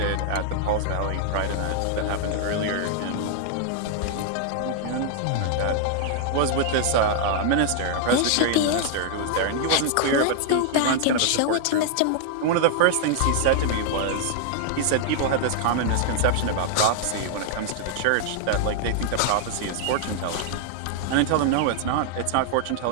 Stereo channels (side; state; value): both; different; correlation 0.00